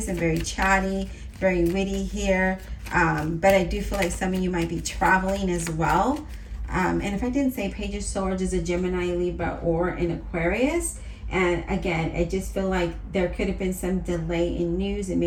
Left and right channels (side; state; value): both; identical; correlation 1.00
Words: and very chatty, very witty here. But I do feel like some of you might be traveling as well. And if I didn't say, Page of Swords is a Gemini, Libra, or an Aquarius. And again, I just feel like there could have been some delay in news, and